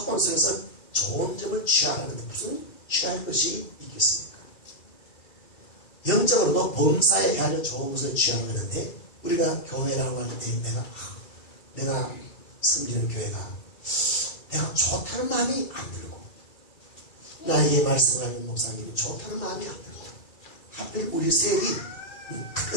속에서 좋은 점을 취하라는데 무슨 취할 것이 있겠습니까? 영적으로도 범사에 헤아려 좋은 것을 취하라고 하는데 우리가 교회라고 할 때 내가 섬기는 교회가 내가 좋다는 마음이 안 들고 나에게 말씀하는 목사님이 좋다는 마음이 안 들고 하필 우리 셀이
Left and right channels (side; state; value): right; late; 2.4 ms